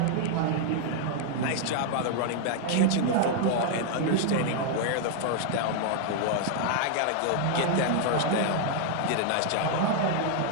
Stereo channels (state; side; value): different; both; correlation 0.00